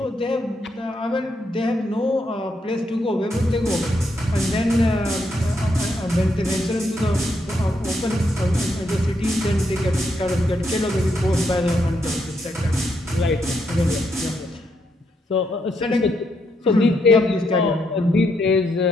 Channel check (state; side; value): normal; both; correlation 0.78